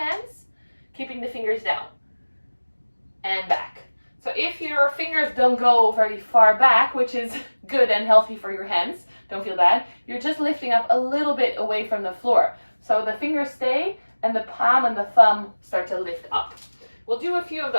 keeping the fingers down and back. So if your fingers don't go very far back, which is good and healthy for your hands, don't feel bad, you're just lifting up a little bit away from the floor. So the fingers stay and the palm and the thumb start to lift up. We'll do a few of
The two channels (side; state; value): both; inverted; correlation -1.00